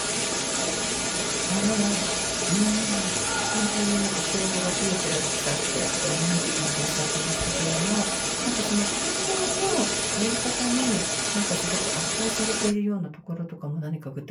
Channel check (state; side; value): identical; both; correlation 1.00